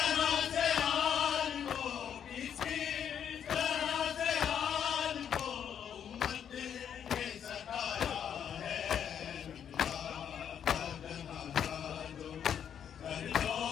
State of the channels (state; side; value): quieter; right; 8.6 dB